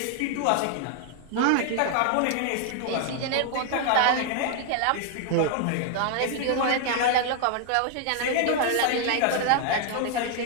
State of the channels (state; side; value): different; both; correlation 0.00